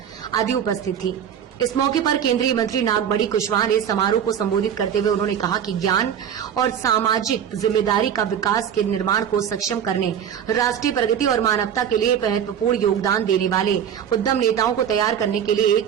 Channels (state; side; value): quieter; left; 8.7 dB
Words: आदि उपस्थित थी। इस मौके पर केंद्रीय मंत्री नागमणि कुशवाहा ने समारोह को संबोधित करते हुए उन्होंने कहा कि ज्ञान और सामाजिक जिम्मेदारी का विकास के निर्माण को सक्षम करने, राष्ट्रीय प्रगति और मानवता के लिए महत्वपूर्ण योगदान देने वाले उद्यम नेताओं को तैयार करने के लिए एक